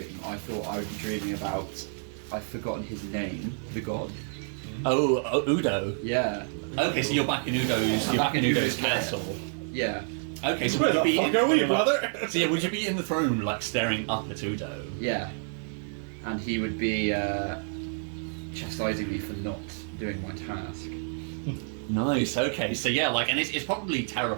I thought I would be dreaming about. I've forgotten his name, the god. Oh, Udo. Yeah. Okay, so you're back in Udo's. I'm You're back back in in Udo's Udo's lair. castle. Yeah. Okay, so Where would you the be fuck are we, brother? So yeah, would you be in the throne room, like staring up at Udo? Yeah. And he would be chastising me for not doing my task. Nice. Okay. So yeah, like, and it's probably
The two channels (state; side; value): silent; left; 59 dB below the other